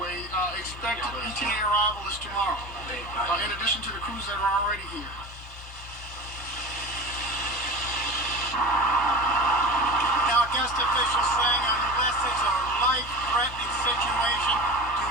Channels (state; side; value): normal; both; correlation 0.33